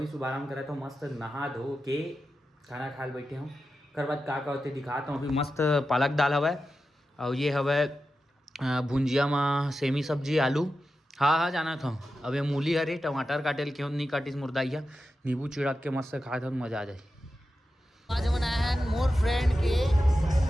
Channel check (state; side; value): normal; both; correlation 0.91